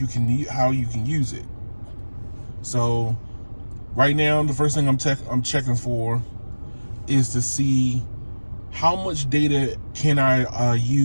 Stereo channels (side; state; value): both; inverted; correlation -1.00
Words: how you can use it. So right now, the first thing I'm checking for is to see how much data can I